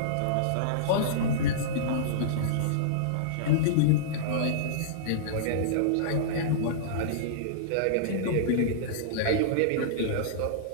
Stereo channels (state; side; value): different; both; correlation -0.03